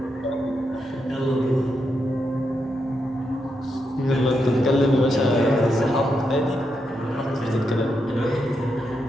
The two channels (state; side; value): normal; both; correlation 0.83